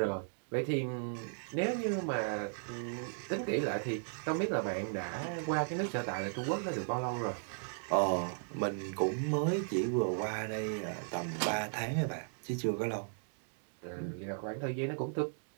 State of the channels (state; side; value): silent; left; digital silence